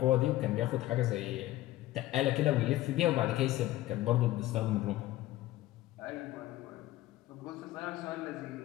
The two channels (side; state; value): right; quieter; 15.9 dB